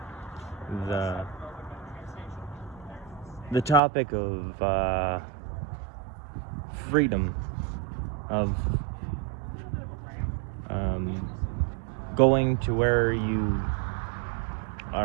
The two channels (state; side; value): drops out; left; at 3.8 s